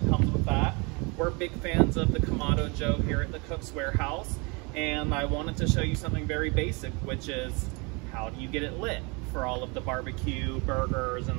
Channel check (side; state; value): left; quieter; 29.8 dB